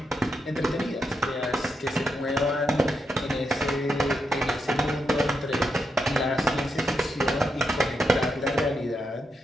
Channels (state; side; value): normal; both; correlation 0.83